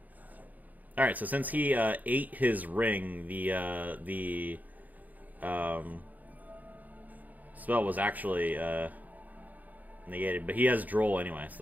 Alright, so since he ate his ring, the spell was actually... negated, but he has Droll anyway,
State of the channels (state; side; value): late; left; 0.081 ms